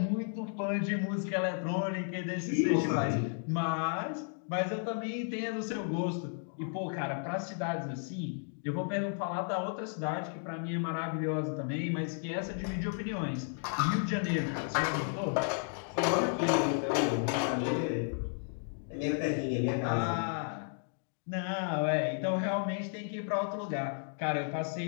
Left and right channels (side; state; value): right; silent; 55 dB below the other